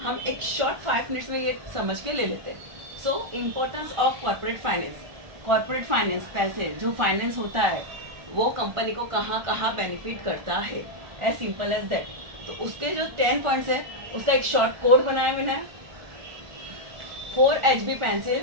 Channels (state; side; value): late; left; 1.4 ms